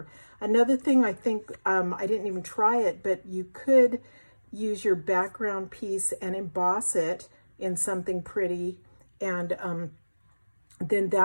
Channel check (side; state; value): both; inverted; correlation -1.00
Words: Another thing, I think, I didn't even try it, but you could use your background piece and emboss it in something pretty, and then